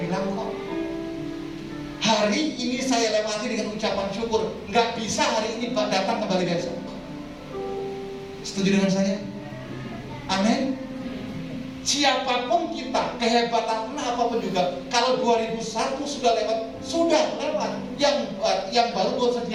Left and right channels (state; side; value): identical; both; correlation 1.00